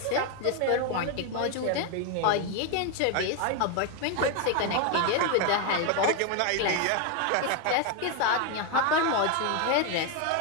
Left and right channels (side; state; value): both; different; correlation 0.01